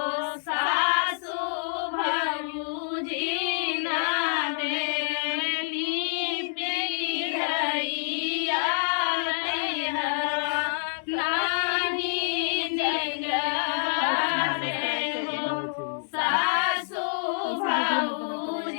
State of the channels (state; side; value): silent; right; digital silence